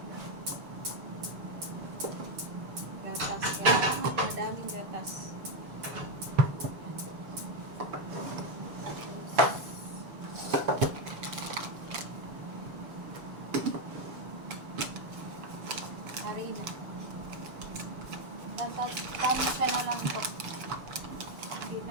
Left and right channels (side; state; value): left; late; 6.9 ms